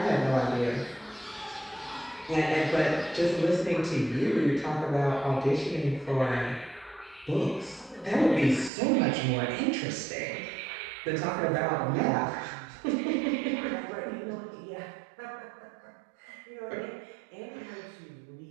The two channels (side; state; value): left; drops out; at 8.7 s